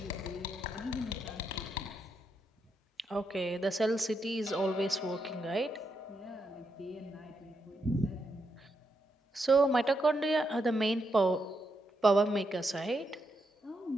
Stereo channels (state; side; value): normal; both; correlation 0.81